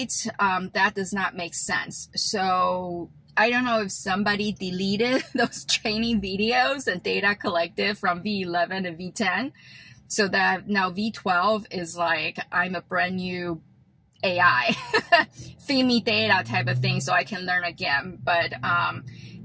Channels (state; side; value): identical; both; correlation 1.00